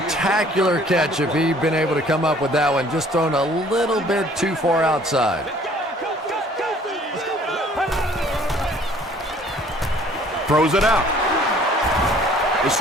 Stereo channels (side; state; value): both; normal; correlation 0.55